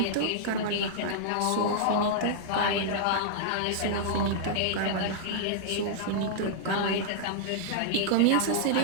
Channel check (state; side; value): different; both; correlation -0.02